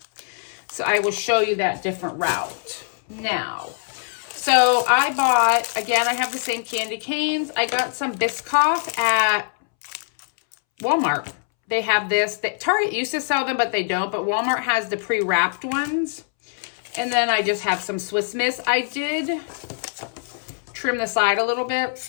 So I will show you that different route now. So I bought, again, I have the same candy canes. I got some Biscoff at Walmart. They have this. Target used to sell them, but they don't. But Walmart has the pre-wrapped ones. And then I just have some Swiss Miss. I did trim the side a little bit.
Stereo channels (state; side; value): silent; right; 64 dB below the other